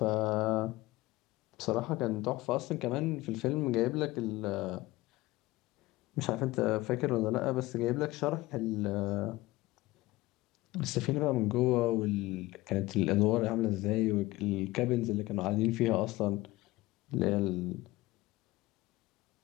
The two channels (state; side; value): quieter; right; 19.2 dB